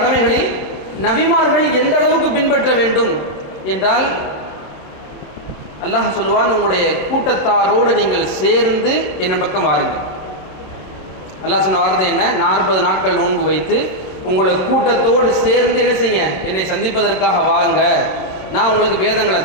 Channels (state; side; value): late; right; 26 ms